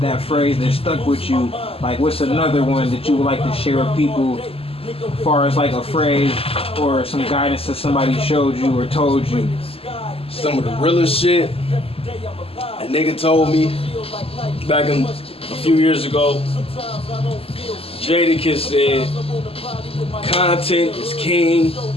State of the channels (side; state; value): right; late; 0.28 ms